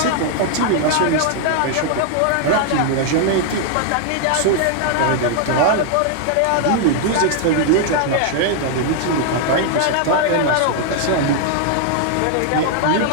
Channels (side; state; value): both; different; correlation 0.00